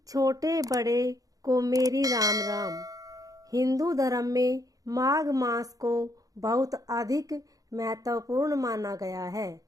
छोटे बड़े को मेरी राम राम। हिंदू धर्म में माघ मास को बहुत अधिक महत्वपूर्ण माना गया है।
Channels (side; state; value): left; late; 0.17 ms